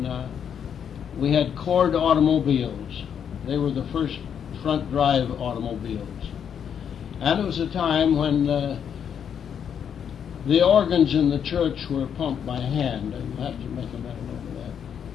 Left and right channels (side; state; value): right; quieter; 8.1 dB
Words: we had Cord automobiles. They were the first front drive automobiles. And it was a time when the organs in the church were pumped by hand, and you have to make a mental note of that.